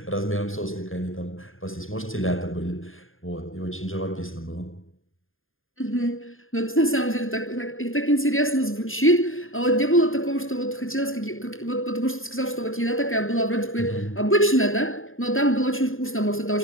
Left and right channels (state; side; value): late; right; 0.59 ms